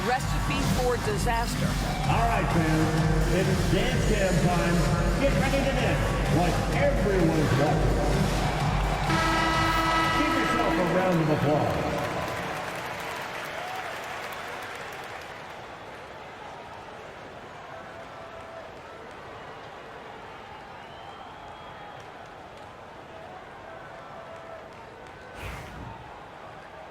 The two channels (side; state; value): both; identical; correlation 1.00